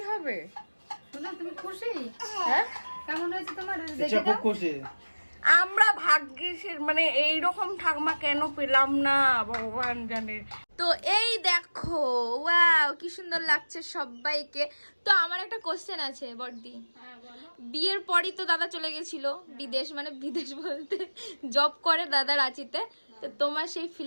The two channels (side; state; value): both; inverted; correlation -1.00